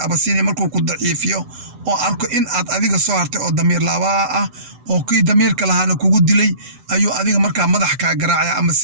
Abasiiniya markuu ku daciifiyo oo arko in aad adiga soo hartay oo damiir laabaa ah oo kii damiirka lahaana kugu dilay ayuu adiga markaa madax ka garaacaya ama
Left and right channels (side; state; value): left; late; 7.9 ms